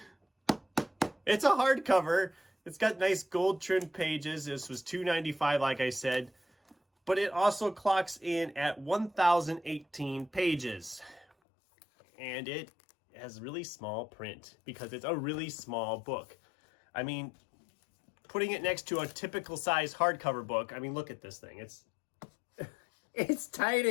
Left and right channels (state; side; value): drops out; right; at 11.2 s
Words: a hardcover. It's got nice gold trimmed pages. This was $2.95, like I said, but it also clocks in at 1,018 pages, and it has really small print because it's a really small book. I mean, putting it next to a typical size hardcover book, I mean, look at this thing. It's